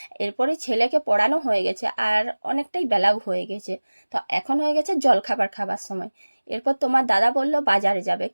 এরপরে ছেলেকে পড়ানো হয়ে গেছে আর অনেকটাই বেলাও হয়ে গেছে। তো এখন হয়ে গেছে জলখাবার খাবার সময়। এরপর তোমার দাদা বলল বাজারে যাবে,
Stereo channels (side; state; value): both; inverted; correlation -1.00